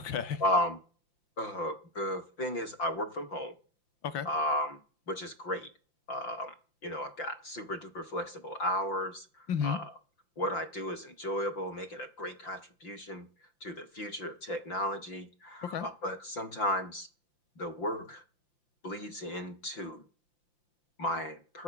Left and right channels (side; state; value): right; late; 5.8 ms